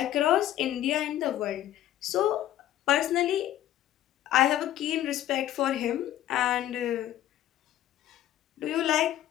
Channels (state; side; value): quieter; right; 12.7 dB